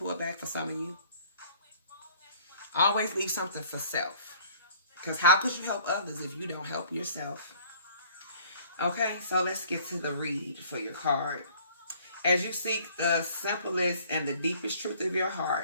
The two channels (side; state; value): both; inverted; correlation -0.54